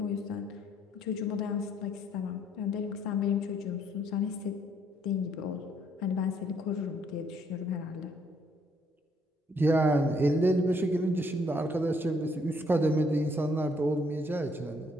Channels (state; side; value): normal; both; correlation 0.68